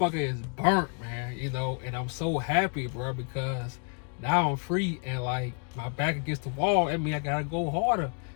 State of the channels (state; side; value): quieter; right; 38.2 dB